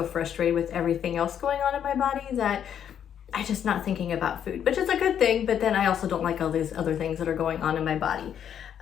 frustrated with everything else going on in my body that I'm just not thinking about food, which is a good thing. But then I also don't like all these other things that are going on in my body.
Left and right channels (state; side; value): quieter; right; 9.0 dB